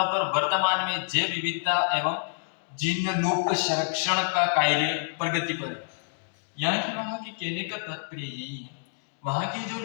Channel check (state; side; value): silent; right; digital silence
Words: पर वर्तमान में जैव विविधता एवं जिनलुप्त संरक्षण का कार्य प्रगति पर है। यहाँ की वहां की कहने का तात्पर्य यही है, वहां की जो